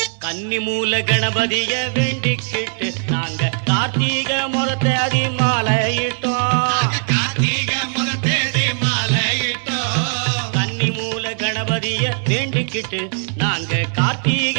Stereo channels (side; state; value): left; silent; digital silence